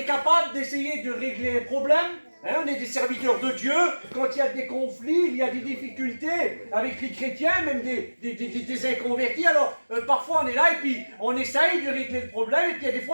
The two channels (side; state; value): both; inverted; correlation -1.00